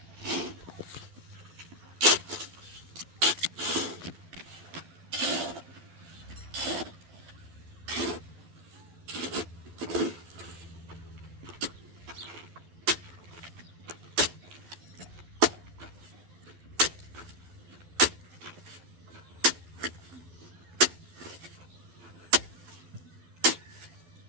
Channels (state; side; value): late; left; 12 ms